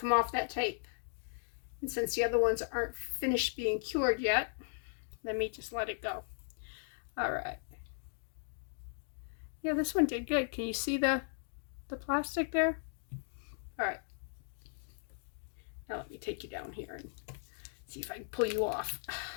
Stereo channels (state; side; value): silent; right; digital silence